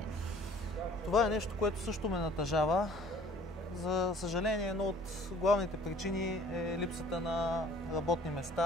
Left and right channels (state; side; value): normal; both; correlation 0.52